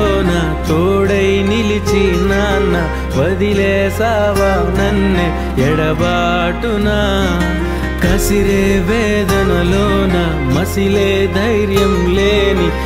తోడై నిలిచి నాన్న వదిలేసావా నన్నే ఎడబాటునా కసిరే వేదనలోన మసిలే ధైర్యం లేని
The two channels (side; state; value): both; identical; correlation 1.00